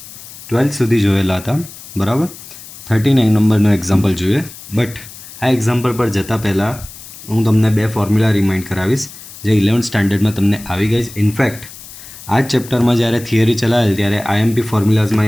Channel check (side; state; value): left; noise; hiss, 16 dB below the sound